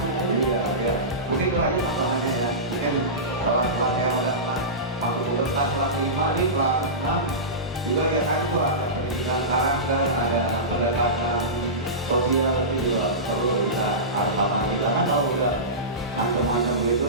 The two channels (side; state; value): both; normal; correlation -0.19